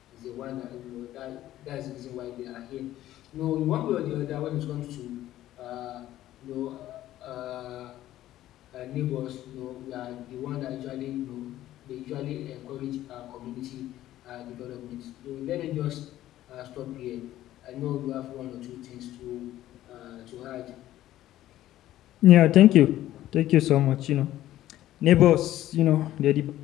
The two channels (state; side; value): quieter; right; 13.9 dB